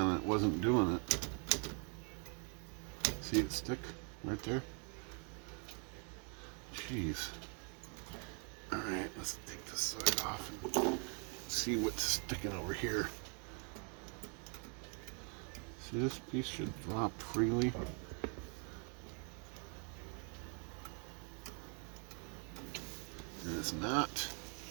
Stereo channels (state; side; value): quieter; left; 38.1 dB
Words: and it wasn't doing it. See it stick right there? Jeez. Alright, let's take this side off and see what's sticking over here. See, this piece should drop freely. And it's not